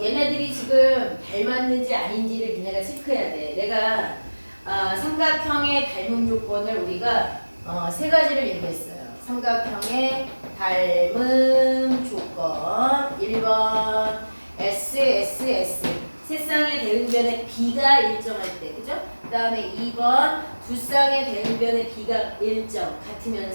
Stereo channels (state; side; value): inverted; both; correlation -1.00